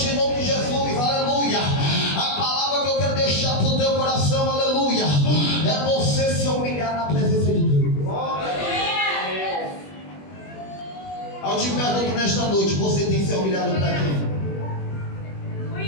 em nome de Jesus, aleluia, a palavra que eu quero deixar para o teu coração, aleluia, é você se humilhar na presença de Deus. Eu te pergunto nesta noite: você tem se humilhado para quem?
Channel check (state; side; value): late; right; 21 ms